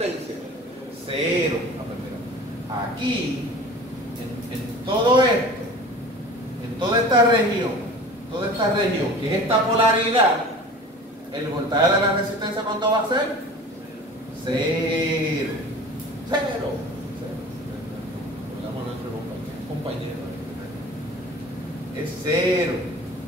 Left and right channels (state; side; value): normal; both; correlation 0.41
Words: 0. Aquí, en todo esto, en toda esta región, que es esta polaridad, el voltaje de la resistencia, ¿cuánto va a ser? 0. Compañero. Es 0.